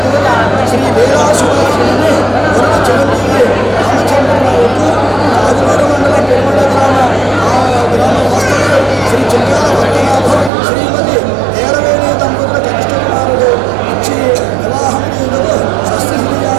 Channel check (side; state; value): left; drops out; at 10.5 s